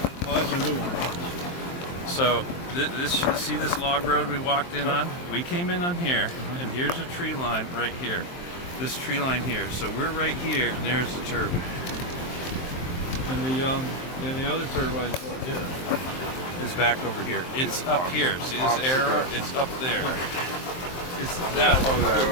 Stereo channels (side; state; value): right; late; 23 ms